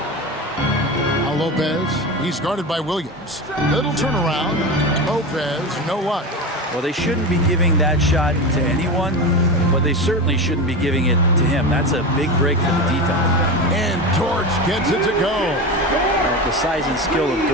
Now Lopez. He's guarded by Williams. Little turnaround. Lopez, no luck. Well, they shouldn't be giving that shot to anyone, but they certainly shouldn't be giving it to him. That's a big break for the defense. And Dort gets it to go. The size and skill of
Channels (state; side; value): normal; both; correlation 0.23